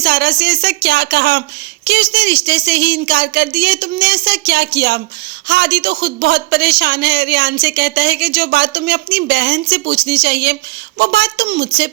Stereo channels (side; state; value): left; quieter; 23.1 dB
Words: से ऐसा क्या कहा कि उसने रिश्ते से ही इनकार कर दिया, तुमने ऐसा क्या किया। हादी तो खुद बहुत परेशान है। रेहान से कहता है कि जो बात तुम्हें अपनी बहन से पूछनी चाहिए वो बात तुम मुझसे